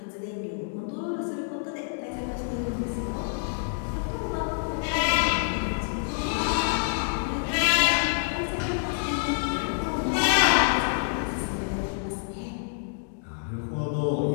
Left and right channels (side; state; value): right; silent; digital silence